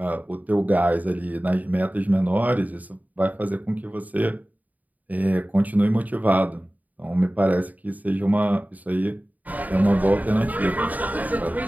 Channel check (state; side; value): late; left; 0.077 ms